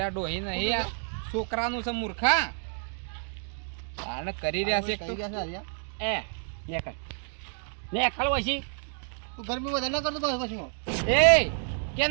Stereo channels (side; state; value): left; silent; 58 dB below the other